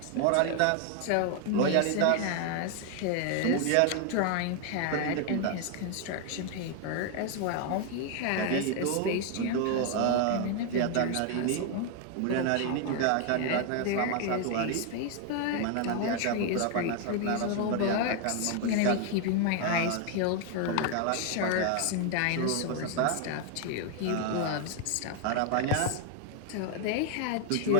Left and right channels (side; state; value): both; different; correlation 0.00